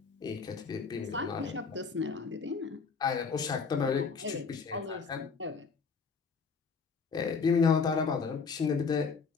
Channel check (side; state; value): right; quieter; 5.3 dB